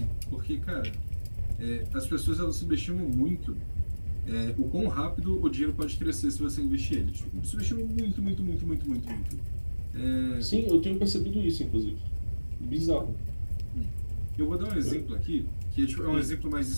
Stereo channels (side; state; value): both; inverted; correlation -1.00